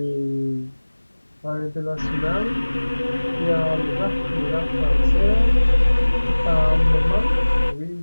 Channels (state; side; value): inverted; both; correlation -1.00